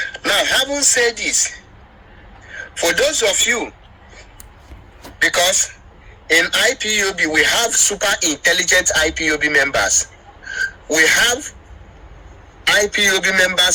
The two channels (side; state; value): both; identical; correlation 1.00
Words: Now, having said this, for those of you, because in IPOB we have super intelligent IPOB members, we have IPOB